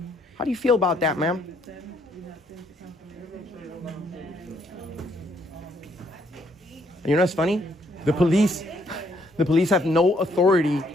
How do you feel about that, ma'am? You know what's funny? The police have no authority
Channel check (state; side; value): normal; both; correlation 0.69